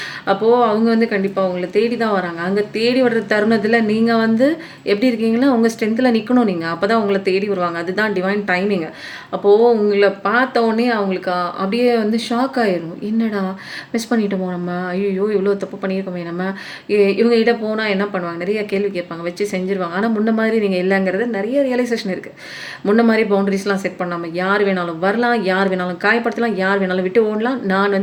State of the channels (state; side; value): identical; both; correlation 1.00